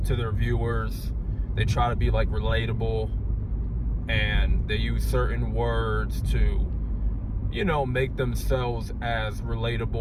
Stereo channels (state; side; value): identical; both; correlation 1.00